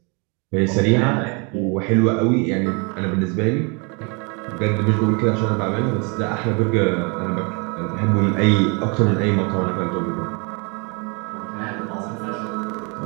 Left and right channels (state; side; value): quieter; left; 32.5 dB